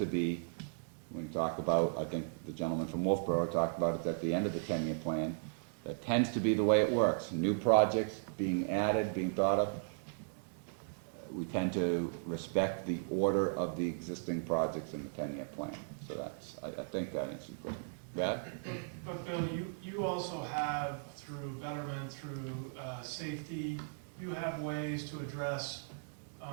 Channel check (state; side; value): silent; left; digital silence